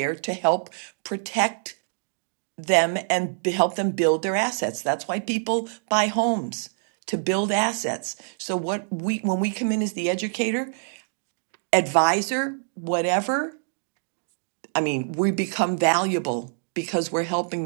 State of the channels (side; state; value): left; silent; digital silence